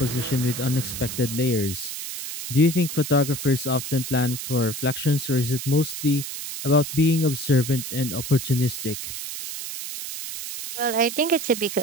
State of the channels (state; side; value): noise; right; hiss, 7 dB below the sound